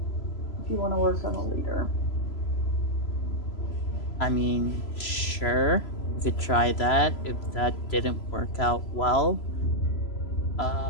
If you want to work on the leader. I mean, sure, we could try that. If that didn't work out well,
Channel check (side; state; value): right; late; 3.0 ms